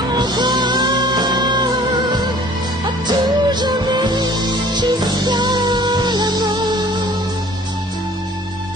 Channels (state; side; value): normal; both; correlation 0.51